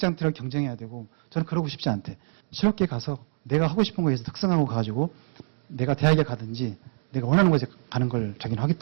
들어가 경쟁해야 되고 저는 그러고 싶지 않대. 실업계 가서 내가 하고 싶은 거에서 특성하고 가가지고 내가 대학에 가든지 내가 원하는 곳에 가는 걸 자기는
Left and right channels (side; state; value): left; silent; digital silence